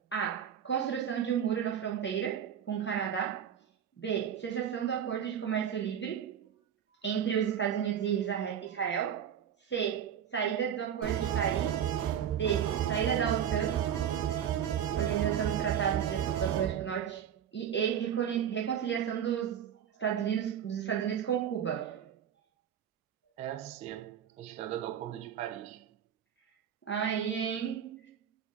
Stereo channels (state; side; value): quieter; left; 8.9 dB